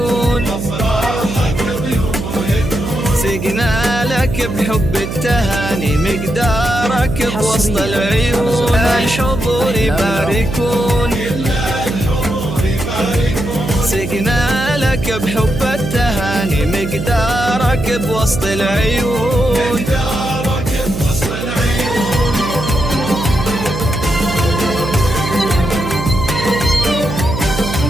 سقنا لك بحب التهاني مقدارك بوسط العيون الحضور يباركون سقنا لك بحب التهاني مقدارك بوسط العيون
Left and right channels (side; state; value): right; noise; hum, 6 dB below the sound